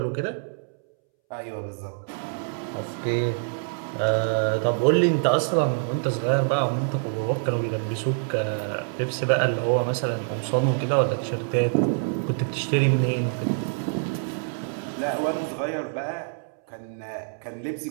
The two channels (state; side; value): silent; left; 61 dB below the other